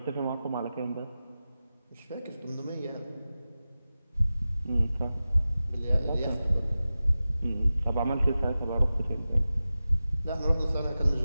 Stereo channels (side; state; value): both; inverted; correlation -0.94